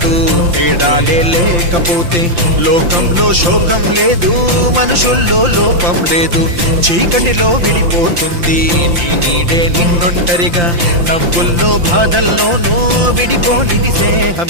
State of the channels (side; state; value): left; late; 5.8 ms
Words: తేడాలే లేకపోతే లోకంలో శోకం లేదు మనుషుల్లో లోపం లేదు చీకటిలో విడిపోతుంది నీ నీడే నిన్నొంటరిగా నవ్వుల్లో బాధల్లోనూ విడిపోనిది